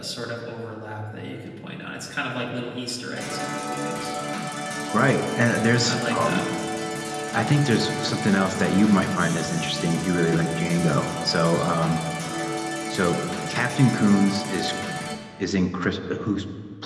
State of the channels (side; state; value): both; identical; correlation 1.00